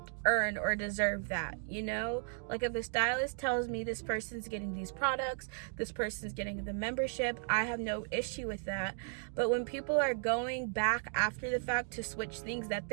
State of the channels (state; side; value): silent; left; 54 dB below the other